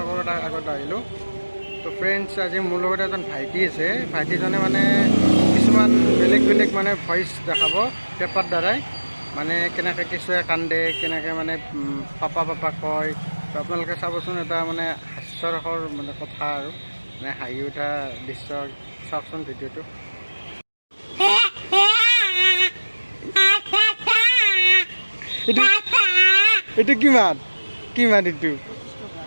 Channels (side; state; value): both; inverted; correlation -1.00